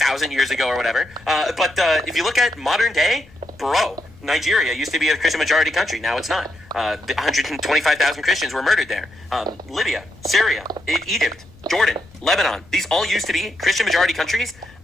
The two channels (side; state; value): left; noise; rumble, 25 dB below the sound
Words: years ago or whatever. But if you look at modern day, bro, Nigeria used to be a Christian majority country. Now it's not. 125,000 Christians were murdered there. Libya, Syria, Egypt, Jordan, Lebanon. These all used to be Christian majority countries.